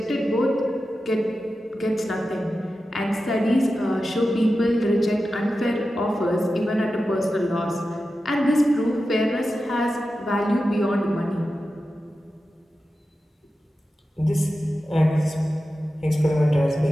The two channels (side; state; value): both; normal; correlation 0.92